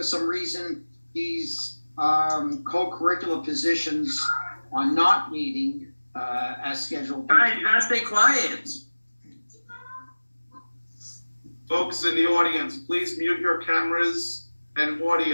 some reason these co-curricular positions are not meeting as scheduled. Guys, you gotta stay quiet. Folks in the audience, please mute your cameras and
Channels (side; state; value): both; inverted; correlation -1.00